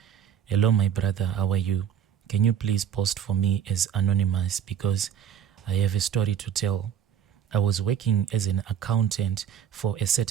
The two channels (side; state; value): left; quieter; 8.7 dB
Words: Hello, my brother, how are you? Can you please post for me as anonymous because I have a story to tell. I was working as an accountant for a